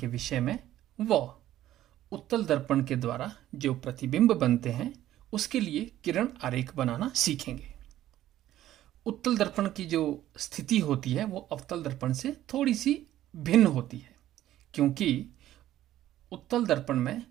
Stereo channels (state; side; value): quieter; left; 13.3 dB